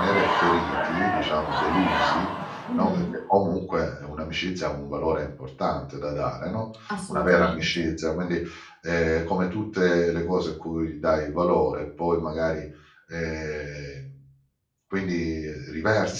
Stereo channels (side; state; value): both; identical; correlation 1.00